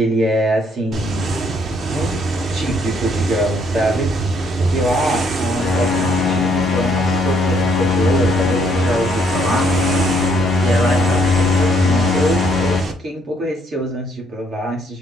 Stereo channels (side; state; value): both; normal; correlation 0.68